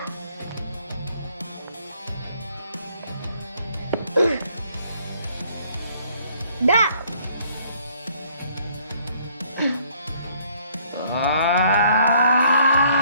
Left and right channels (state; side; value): inverted; both; correlation -0.63